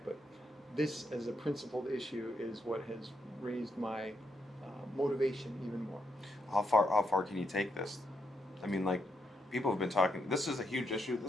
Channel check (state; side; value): normal; both; correlation 0.79